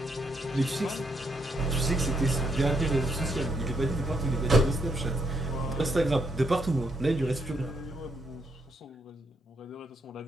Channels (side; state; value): both; normal; correlation 0.75